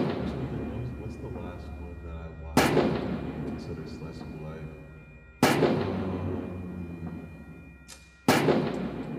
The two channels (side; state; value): both; identical; correlation 1.00